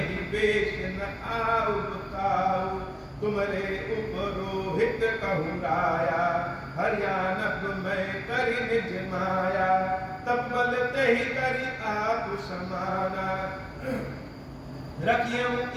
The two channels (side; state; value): both; identical; correlation 1.00